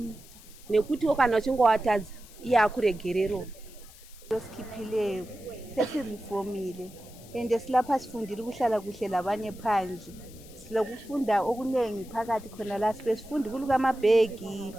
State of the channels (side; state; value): left; noise; hiss, 21 dB below the sound